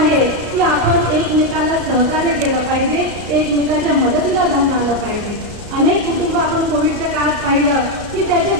की आपण एकमेकांना सहकार्य केलं पाहिजे, एकमेकांच्या मदतीला धावून आलं पाहिजे. अनेक कुटुंब आपण कोविडच्या काळात पाहिलं की त्याचे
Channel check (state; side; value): late; left; 34 ms